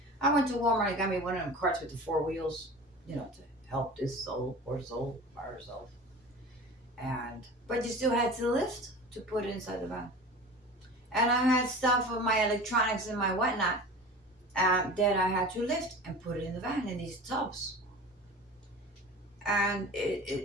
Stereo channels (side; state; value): both; normal; correlation 0.36